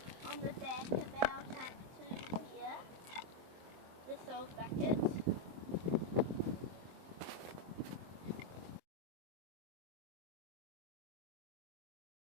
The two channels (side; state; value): left; late; 23 ms